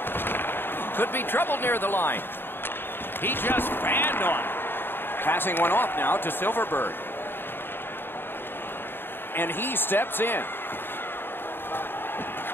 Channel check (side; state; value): right; late; 0.10 ms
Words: Could be trouble near the line. He just fanned on it. Passing one off now to Silverberg. And he steps in.